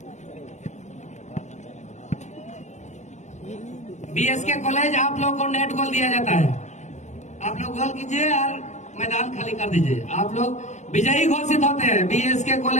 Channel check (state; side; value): late; right; 0.34 ms